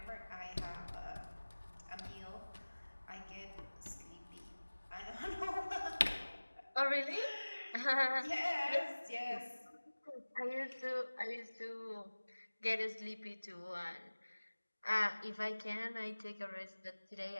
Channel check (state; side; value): inverted; both; correlation -1.00